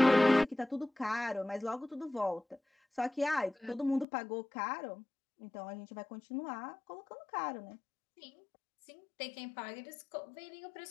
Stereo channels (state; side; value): drops out; right; at 4.0 s